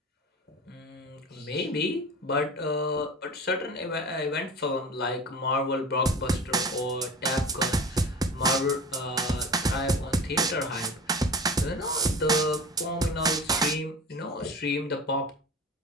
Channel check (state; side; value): normal; both; correlation 0.35